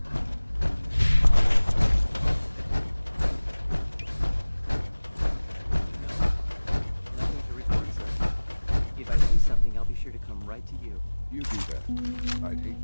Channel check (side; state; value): both; inverted; correlation -1.00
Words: Nothing to report, sir. If I see something, I'll be sure to come right to you. You do that. I'd hate